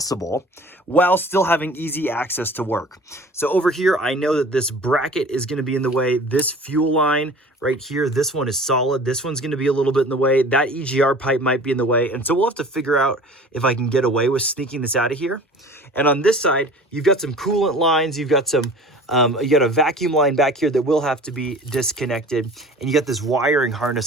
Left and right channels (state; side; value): normal; both; correlation 0.43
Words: while still having easy access to work. So over here, I know that this bracket is going to be in the way. This fuel line right here, this one is solid. This one's going to be a little bit in the way. That EGR pipe might be in the way. And so we'll have to figure out if I can get away with sneaking this out of here. And on this side, you've got some coolant lines. You've got some you got a vacuum line back here that will have to be disconnected, and you got this wiring